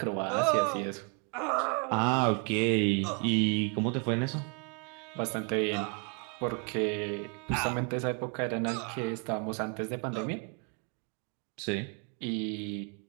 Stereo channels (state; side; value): quieter; left; 36.7 dB